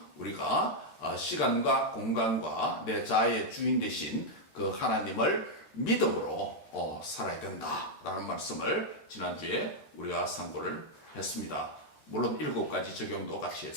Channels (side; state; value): right; late; 13 ms